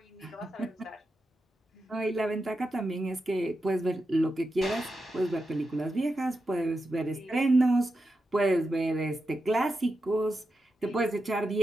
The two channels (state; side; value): normal; both; correlation 0.89